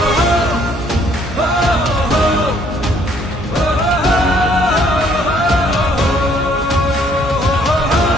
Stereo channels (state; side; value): normal; both; correlation 0.64